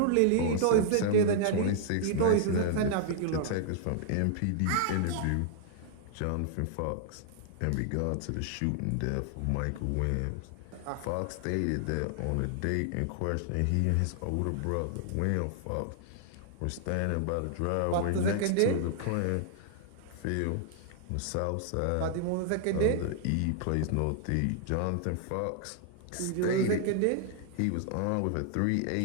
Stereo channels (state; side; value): different; both; correlation -0.01